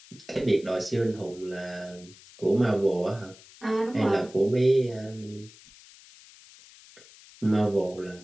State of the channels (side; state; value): left; noise; hiss, 22 dB below the sound